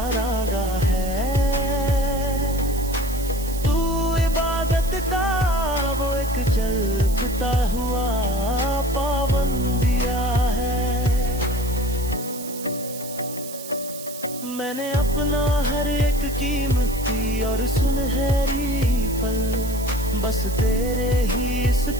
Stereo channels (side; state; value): right; noise; hiss, 12 dB below the sound